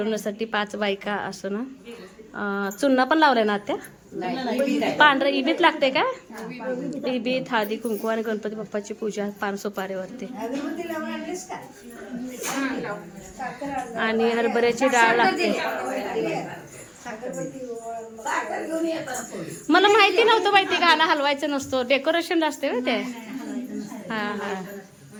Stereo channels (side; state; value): both; identical; correlation 1.00